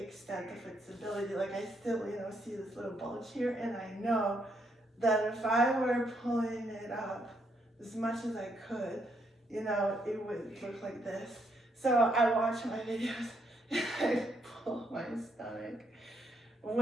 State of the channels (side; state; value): both; normal; correlation 0.75